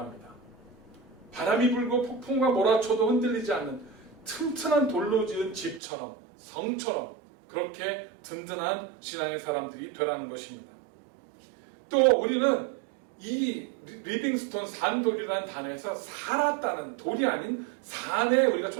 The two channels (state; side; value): drops out; left; at 5.8 s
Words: 바람이 불고 폭풍과 몰아쳐도 흔들리지 않는 튼튼한 돌로 지은 집처럼, 성처럼 그렇게 든든한 신앙의 사람들이 되라는 것입니다. 또 우리는 이 리빙스톤 산돌이라는 단어에서 살았다는, 돌이 아닌 산에 우리가